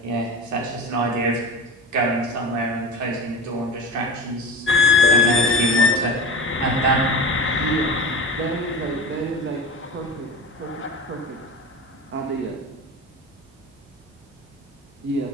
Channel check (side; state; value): both; normal; correlation 0.31